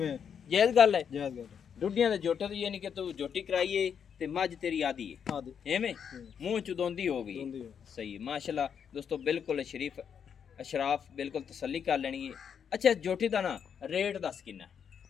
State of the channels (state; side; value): quieter; right; 7.5 dB